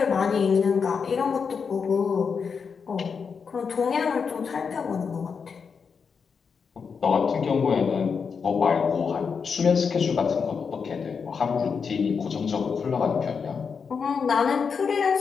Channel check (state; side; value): quieter; right; 5.9 dB